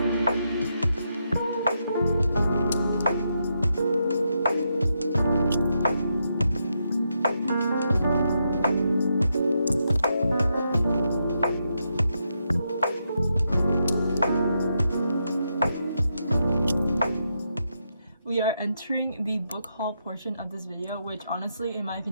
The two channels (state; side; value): inverted; both; correlation -0.82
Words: are entering the book haul portion of this video, which honestly, in my